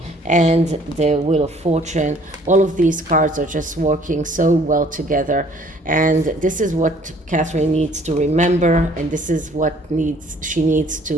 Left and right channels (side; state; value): both; normal; correlation 0.58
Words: and the Wheel of Fortune. All of these cards are just working so well together, and this is what Catherine needs to remember, and this is what she needs